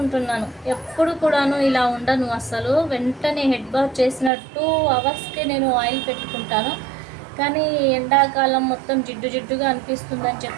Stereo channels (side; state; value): left; drops out; at 4.3 s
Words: ఎప్పుడు కూడాను ఇలా ఉండను అసలు. వెంటనే హెడ్ బాత్ చేసిన 2 అవర్స్కే నేను ఆయిల్ పెట్టుకుంటాను. కానీ ఎండాకాలం మొత్తం జిడ్డు జిడ్డుగా అనిపిస్తుందని